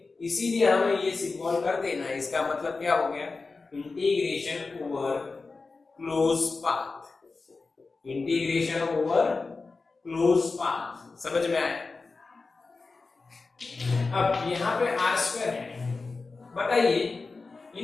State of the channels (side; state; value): right; quieter; 4.0 dB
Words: इसीलिए हमें ये सिंबल कर देना है। इसका मतलब क्या हो गया, integration over close path, integration over close path. समझ में आया? अब यहाँ पे आर स्क्वायर है, बताइए